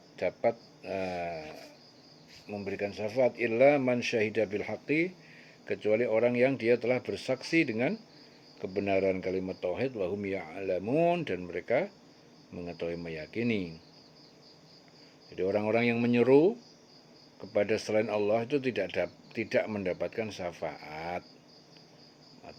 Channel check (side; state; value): both; identical; correlation 1.00